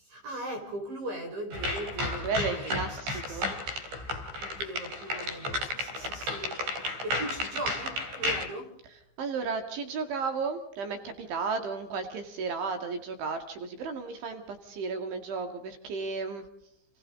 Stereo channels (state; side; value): late; left; 15 ms